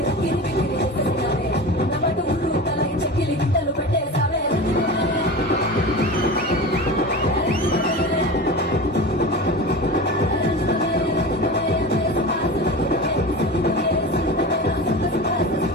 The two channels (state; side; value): normal; both; correlation 0.30